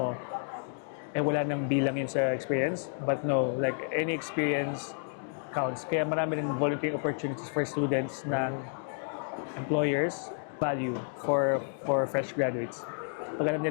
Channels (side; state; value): right; silent; digital silence